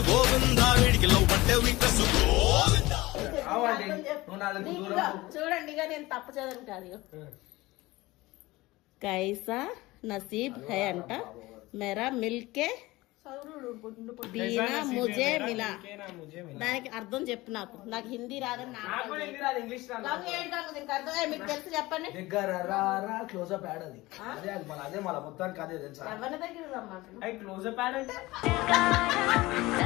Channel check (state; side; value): quieter; right; 19.9 dB